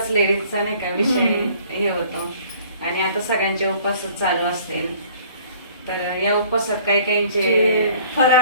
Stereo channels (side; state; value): both; inverted; correlation -0.54